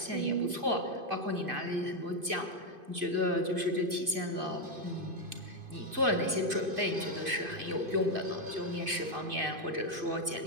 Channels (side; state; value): left; late; 2.5 ms